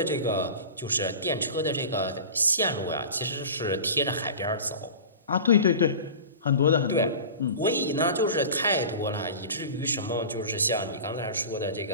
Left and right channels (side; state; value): both; inverted; correlation -0.35